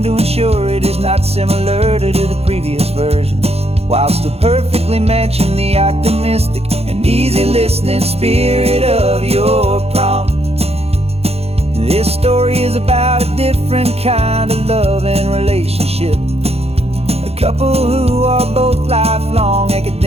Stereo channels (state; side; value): late; left; 0.29 ms